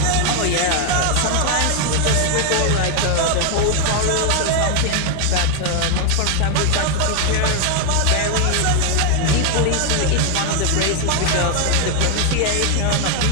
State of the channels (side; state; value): both; different; correlation 0.00